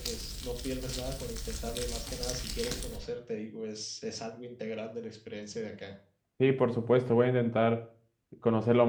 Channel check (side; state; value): both; identical; correlation 1.00